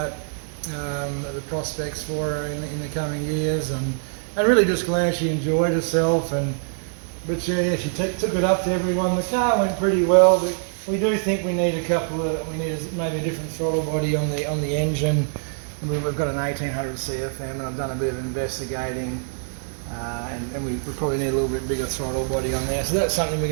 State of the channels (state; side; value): silent; left; 63 dB below the other